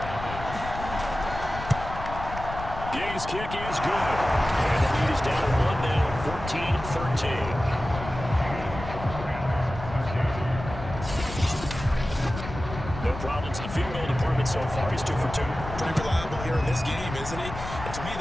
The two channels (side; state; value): left; noise; rumble, 9 dB below the sound